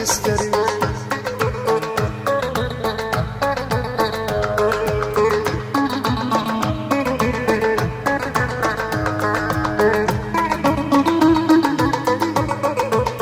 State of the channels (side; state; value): both; identical; correlation 1.00